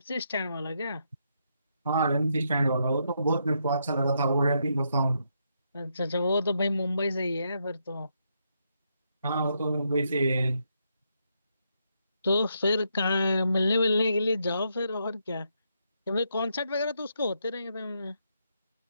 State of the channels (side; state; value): both; inverted; correlation -0.79